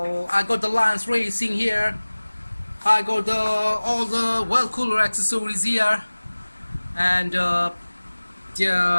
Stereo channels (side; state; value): both; inverted; correlation -1.00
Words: got the Lines Racing here. I got all the well cooler accessories here, and yeah,